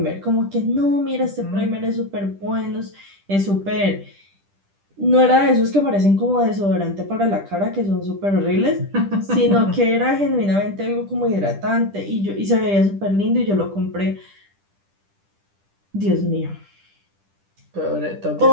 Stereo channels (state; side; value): late; left; 10 ms